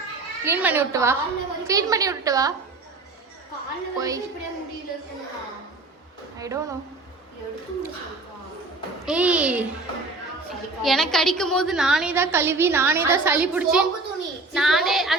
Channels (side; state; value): left; quieter; 3.3 dB